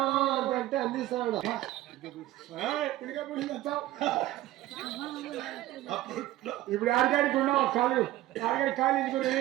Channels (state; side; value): quieter; left; 15.4 dB